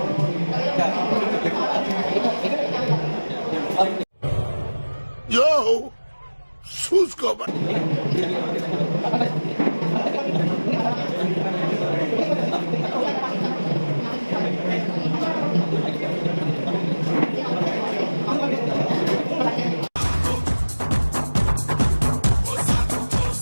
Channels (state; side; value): inverted; both; correlation -1.00